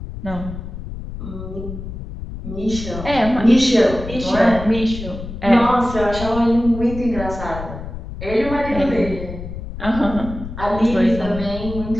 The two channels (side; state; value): left; noise; rumble, 9 dB below the sound